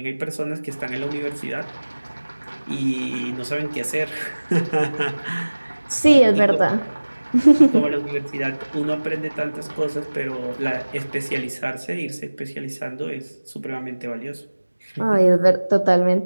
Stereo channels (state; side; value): inverted; both; correlation -1.00